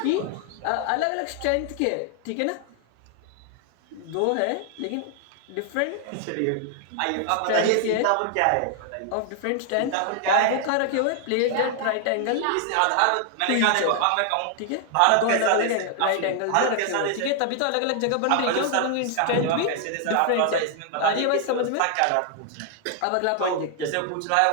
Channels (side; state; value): both; different; correlation 0.00